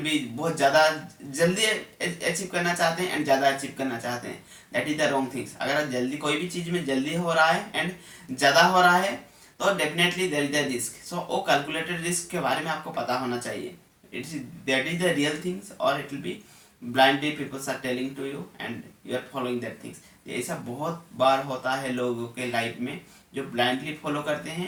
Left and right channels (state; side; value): identical; both; correlation 1.00